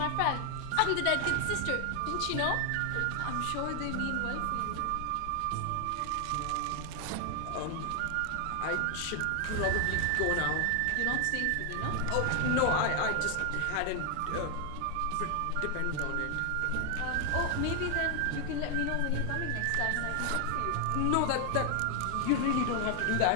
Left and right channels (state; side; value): different; both; correlation 0.00